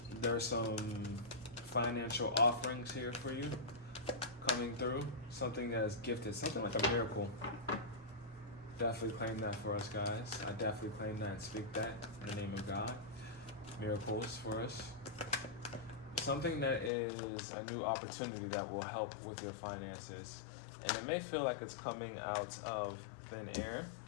There's some financial offerings here for you coming through. Something that is gifted, something like a miracle. Definitely claim that for us, guys. I definitely claim that and speak that in the name of God. Miracles for us. Something that is a new opportunity that will help with your finances. And it may feel like it's coming out of thin air.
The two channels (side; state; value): right; drops out; at 16.9 s